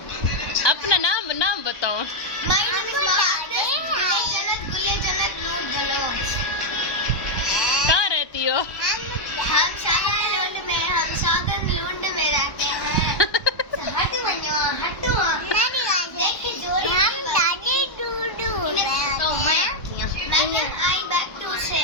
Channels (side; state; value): right; late; 1.2 ms